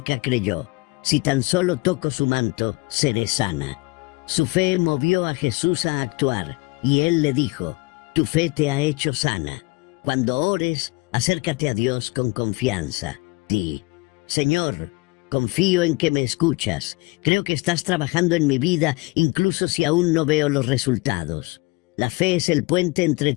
creyó: «Si tan solo toco su manto, seré sana». Su fe movió a Jesús a actuar, y Él le dijo: «Tu fe te ha hecho sana». Cuando ores, acércate a Dios con confianza. Di: «Señor, confío en que me escuchas. Creo que estás trabajando en mi vida, incluso si aún no veo los resultados». La fe es el puente entre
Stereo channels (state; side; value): quieter; right; 24.8 dB